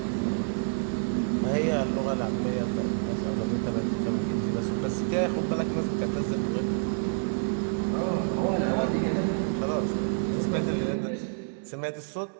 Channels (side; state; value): left; silent; digital silence